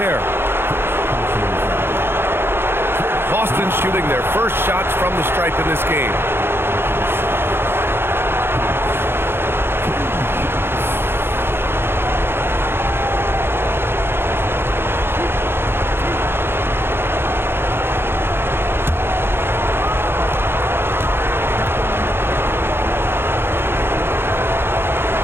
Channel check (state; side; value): late; left; 0.11 ms